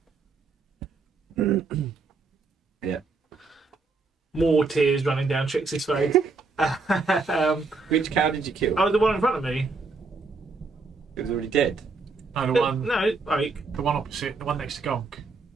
Yeah. More tears running down Trixie's face. Which cow did you kill? Oh, the one in front of me. It was already dead. No, the one, No, like the one opposite, the one next to Gonk.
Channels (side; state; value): left; quieter; 4.0 dB